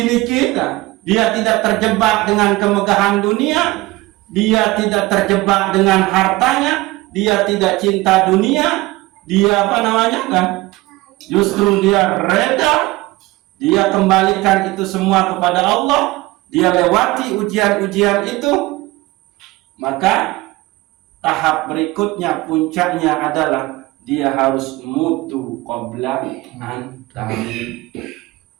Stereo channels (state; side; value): quieter; left; 20.4 dB